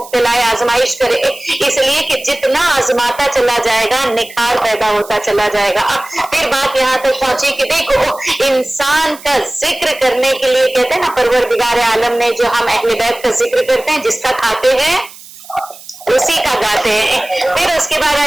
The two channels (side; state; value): right; noise; hiss, 19 dB below the sound